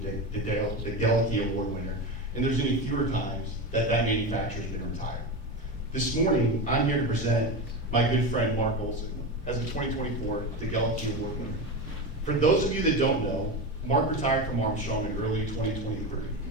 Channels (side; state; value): both; normal; correlation 0.20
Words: the DeGelleke Award winner, and there's any fewer times that manufacturer has been retired. This morning, I'm here to present my good friend Mark Olson as a 2024 DeGelleke Award winner. For those of you that don't know, Mark retired from Armstrong in early 2023.